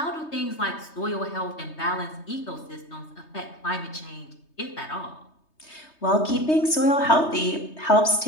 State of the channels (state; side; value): late; right; 3.2 ms